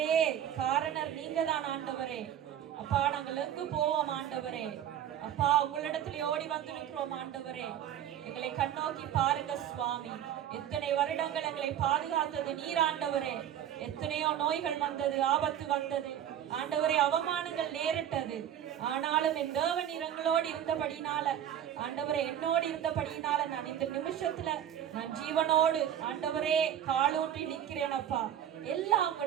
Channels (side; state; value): left; quieter; 10.4 dB